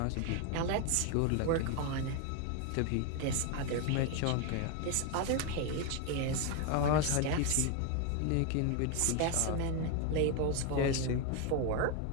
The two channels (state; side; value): different; both; correlation 0.01